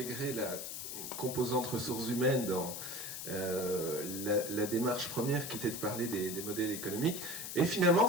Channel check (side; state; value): left; noise; hiss, 7 dB below the sound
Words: la composante ressources humaines dans la démarche première qui était de parler des modèles économiques. Et finalement,